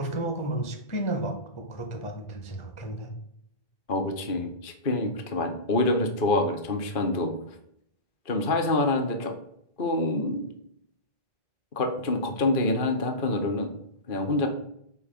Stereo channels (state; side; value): late; right; 2.4 ms